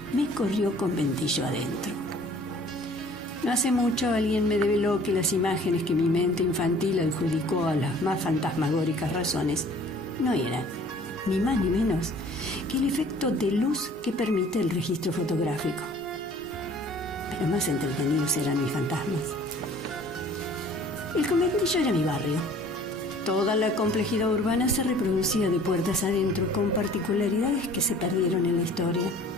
me corrió conventillo adentro. No hace mucho alguien me develó que las imágenes que mi mente infantil adjudicó a las más fantasmagóricas razones no eran, ni más ni menos, que el efecto de luz que permite el registro fotográfico. Pero más entretenidos eran mis fantasmas. El conventillo era mi barrio. Toda la complejidad urbana se reproducía de puertas adentro, con particularidades que se perdieron en la historia.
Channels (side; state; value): both; normal; correlation 0.51